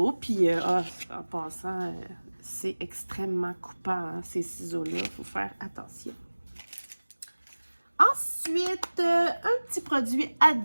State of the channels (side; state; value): both; inverted; correlation -1.00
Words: Puis, en passant, c'est extrêmement coupant, hein, ces ciseaux-là. Il faut faire attention. Ensuite, un petit produit à